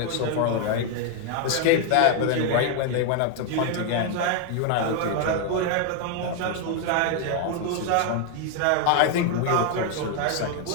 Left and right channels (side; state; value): both; different; correlation 0.01